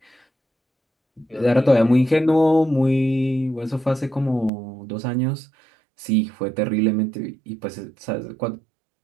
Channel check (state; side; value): drops out; left; at 4.5 s